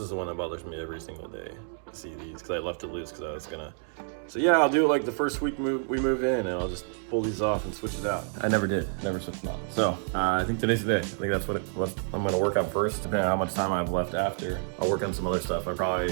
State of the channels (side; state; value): left; silent; 59 dB below the other